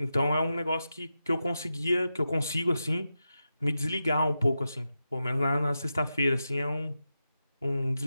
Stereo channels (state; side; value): inverted; both; correlation -0.90